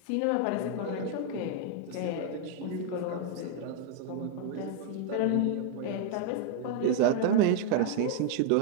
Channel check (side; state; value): both; different; correlation 0.00